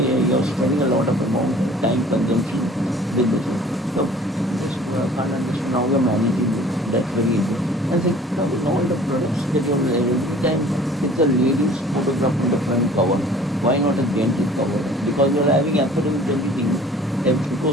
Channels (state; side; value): normal; both; correlation 0.51